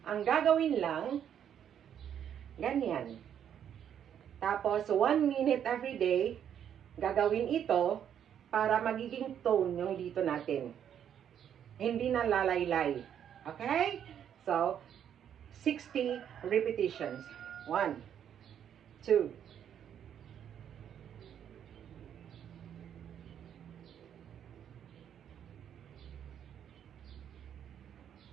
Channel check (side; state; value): left; quieter; 9.2 dB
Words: Ang gagawin lang, ganyan. Tapos, 1 minute every day, gagawin ito para magiging tone yung dito natin. Hindi na lalaylay. Okay? So, 60 repetitions. 1, 2,